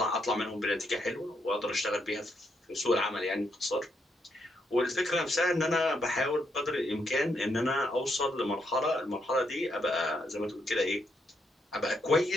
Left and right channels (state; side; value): normal; both; correlation 0.78